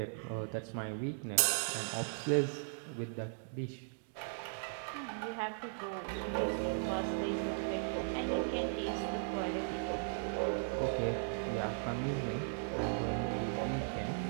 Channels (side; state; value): left; silent; digital silence